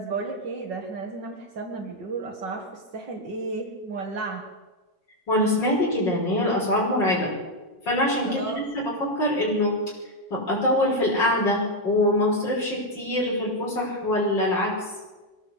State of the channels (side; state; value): both; normal; correlation 0.02